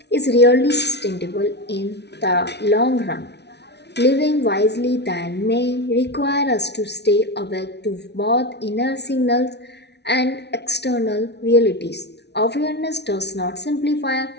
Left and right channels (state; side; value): late; right; 0.50 ms